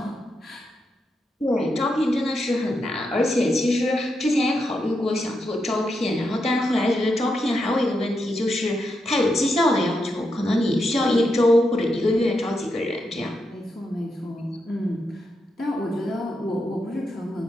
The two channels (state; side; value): normal; both; correlation 0.84